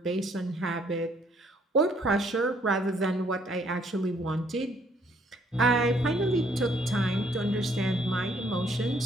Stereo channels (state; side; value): normal; both; correlation 0.65